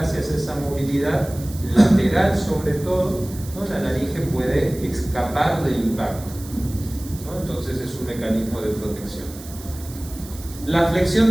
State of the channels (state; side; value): noise; right; hiss, 17 dB below the sound